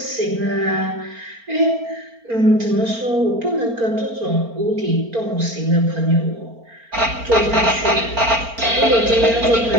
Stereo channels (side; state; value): left; late; 4.4 ms